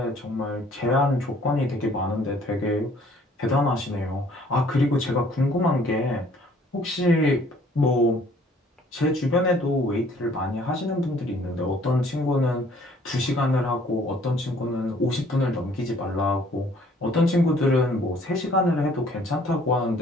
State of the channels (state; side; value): normal; both; correlation 0.58